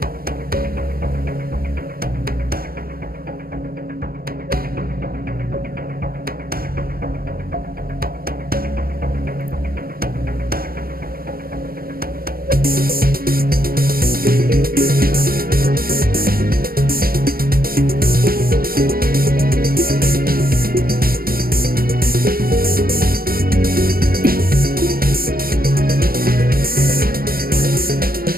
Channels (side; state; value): left; late; 0.43 ms